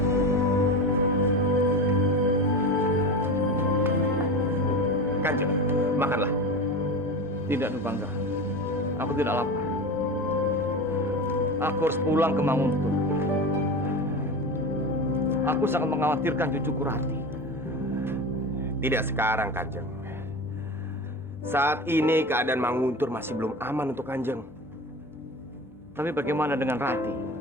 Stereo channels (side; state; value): both; normal; correlation 0.28